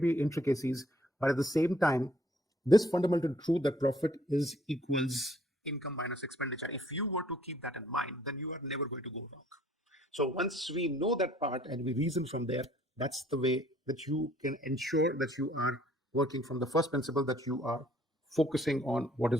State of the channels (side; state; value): both; normal; correlation 0.61